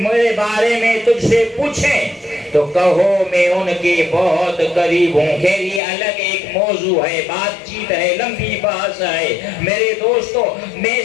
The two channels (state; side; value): drops out; right; at 5.8 s